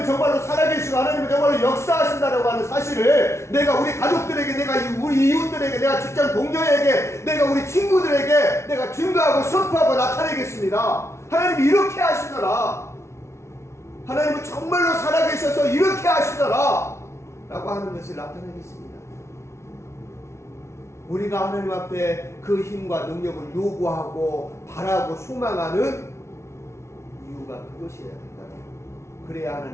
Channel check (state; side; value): late; right; 0.13 ms